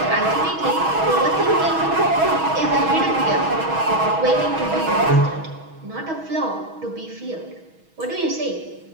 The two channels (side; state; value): left; late; 6.2 ms